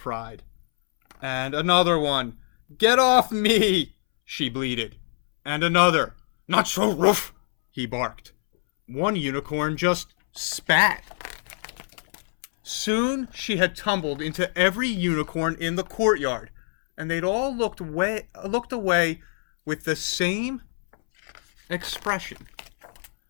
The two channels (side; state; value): right; silent; 62 dB below the other